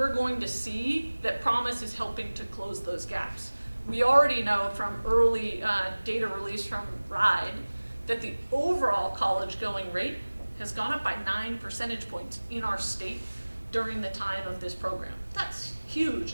going to see that Promise is helping to close those gaps. We already know from early data released from Rhode that the overall college going rate has gone up by 9 percentage points in our state during the time of this program. That's huge.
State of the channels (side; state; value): both; inverted; correlation -1.00